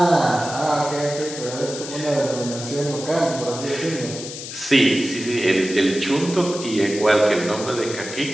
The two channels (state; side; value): noise; left; hiss, 10 dB below the sound